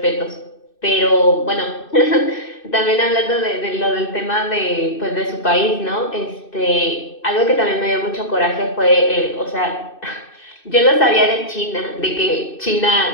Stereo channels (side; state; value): right; late; 2.6 ms